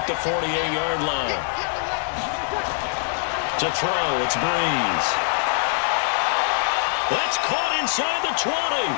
the 48-yard line. To throw, it's Breeze. That's caught inside the 20.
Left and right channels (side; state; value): right; silent; 63 dB below the other